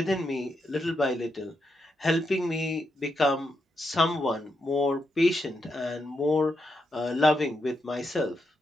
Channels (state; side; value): normal; both; correlation 0.83